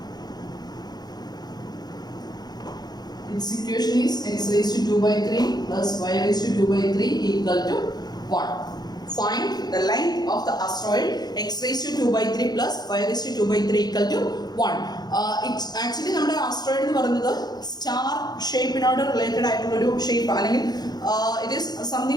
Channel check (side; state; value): right; late; 0.19 ms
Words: Its equation is x raised to 2 by 3 plus y raised to 2 by 3 equal to 1. Find the length of the asteroid x raised to 2 by 3 plus y raised to 2 by 3 equal to 1. It's actually നമ്മുടെ asteroid എന്ന് പറയുന്നത് star ഷേപ്പിനോട് related ആയിട്ടുള്ള ഒരു shape അല്ലെങ്കിൽ it is